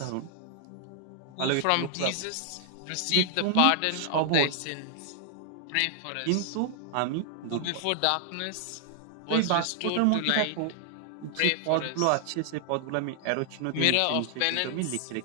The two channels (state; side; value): different; both; correlation 0.00